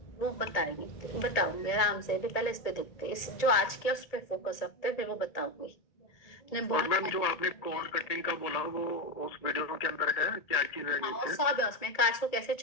वो बताएंगे, बताऊंगी आराम से, अभी पहले इस पे देखते हैं, इस जो आज किया उस पे फोकस रखते हैं, फिर वो बताऊंगी। ने और बहुत मैम जो आपने कॉर्ड कटिंग का बोला वो उस वीडियो के अंदर है, क्या चीज है हाँ, नीचे? सब है उसमें, कार्ड्स को कैसे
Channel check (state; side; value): late; right; 1.8 ms